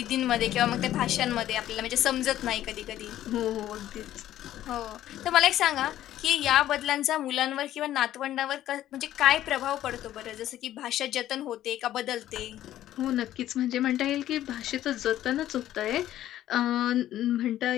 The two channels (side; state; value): right; quieter; 12.9 dB